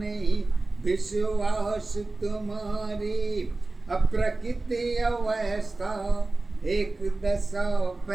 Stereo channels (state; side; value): quieter; left; 3.3 dB